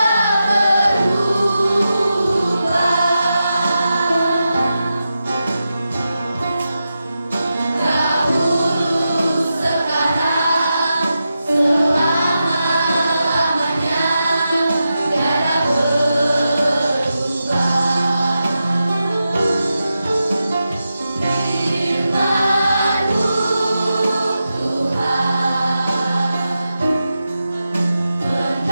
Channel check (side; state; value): both; inverted; correlation -0.90